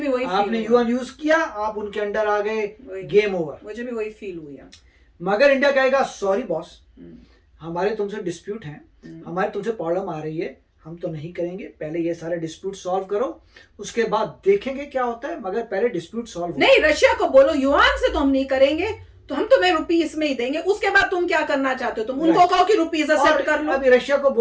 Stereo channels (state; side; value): identical; both; correlation 1.00